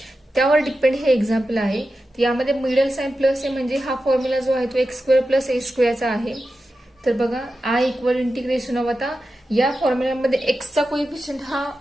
त्यावर डिपेंड हे एक्झाम्पल आहे. यामध्ये मिडल साइन प्लस आहे म्हणजे हा फॉर्म्युला जो आहे तो x² प्लस a² चा आहे. तर बघा I इक्वल इंटिग्रेशन ऑफ, आता या फॉर्म्युल्यामध्ये एक्सचा कोएफिशियंट हा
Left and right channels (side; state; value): both; normal; correlation 0.91